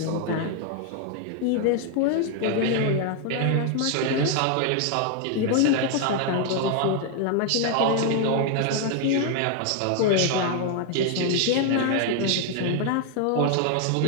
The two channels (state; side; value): different; both; correlation 0.00